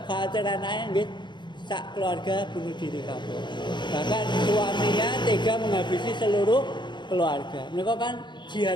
khawatir anake nggih sak keluarga bunuh diri kabeh. Bahkan suaminya tega menghabisi seluruh keluarga. Mereka kan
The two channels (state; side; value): late; right; 0.22 ms